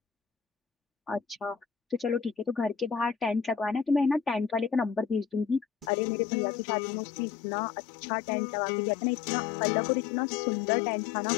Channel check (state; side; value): drops out; right; at 5.9 s